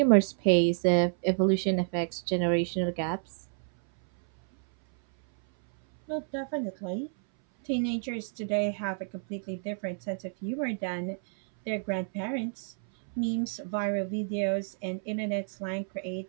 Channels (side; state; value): left; silent; 58 dB below the other